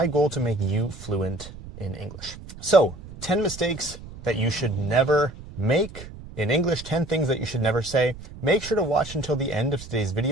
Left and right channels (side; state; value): right; noise; rumble, 15 dB below the sound